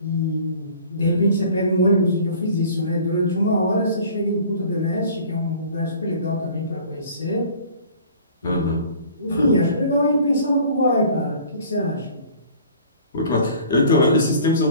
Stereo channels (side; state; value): both; inverted; correlation -0.48